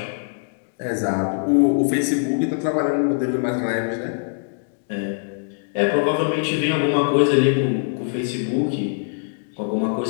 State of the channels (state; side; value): silent; right; digital silence